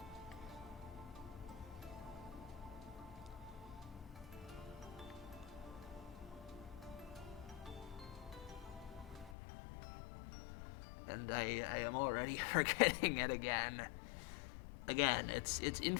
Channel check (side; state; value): right; drops out; at 9.3 s